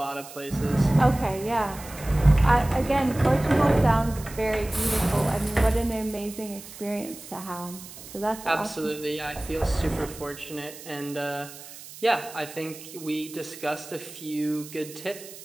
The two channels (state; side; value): noise; right; hiss, 15 dB below the sound